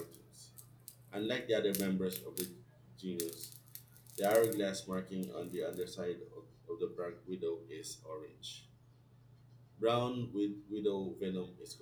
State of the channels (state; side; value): identical; both; correlation 1.00